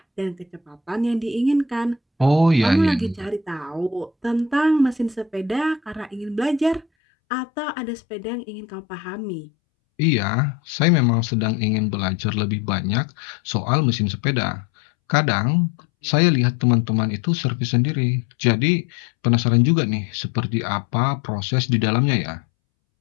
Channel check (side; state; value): right; drops out; at 6.9 s